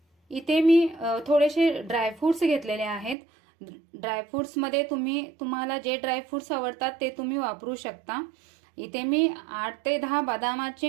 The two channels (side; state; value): left; drops out; at 3.2 s